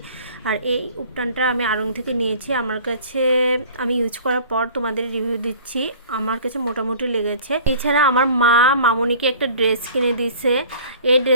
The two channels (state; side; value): inverted; both; correlation -0.47